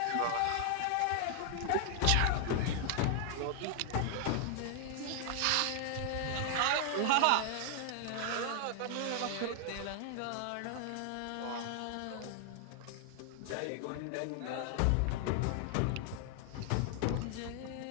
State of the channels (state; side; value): different; both; correlation 0.00